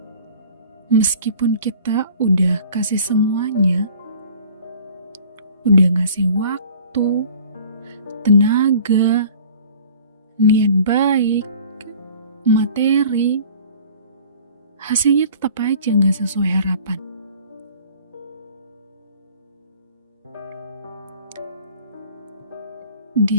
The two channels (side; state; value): both; inverted; correlation -0.48